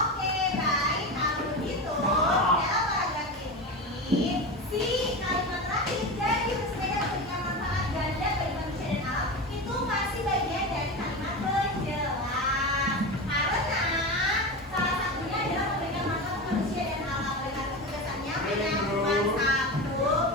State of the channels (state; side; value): normal; both; correlation 0.23